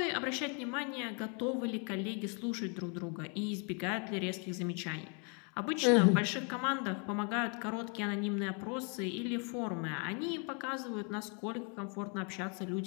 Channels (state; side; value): quieter; right; 37.0 dB